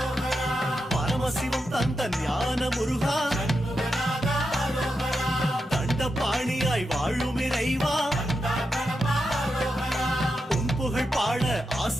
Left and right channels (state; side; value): normal; both; correlation 0.87